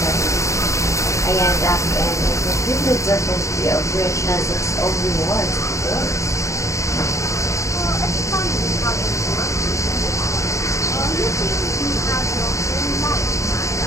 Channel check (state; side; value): late; right; 0.15 ms